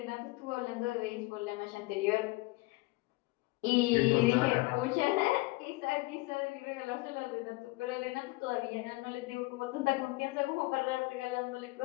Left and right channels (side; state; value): right; quieter; 23.0 dB